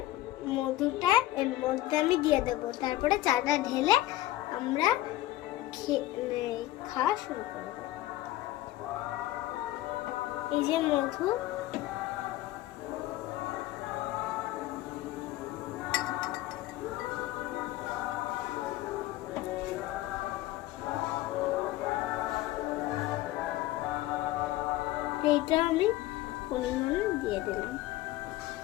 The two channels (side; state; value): right; quieter; 15.9 dB